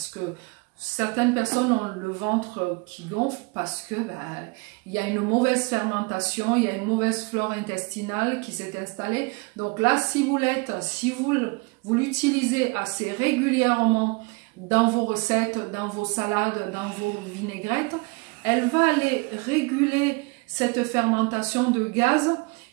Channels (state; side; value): quieter; left; 28.7 dB